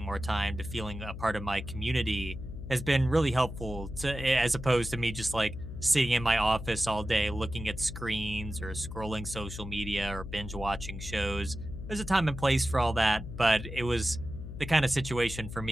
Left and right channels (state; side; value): noise; left; hum, 9 dB below the sound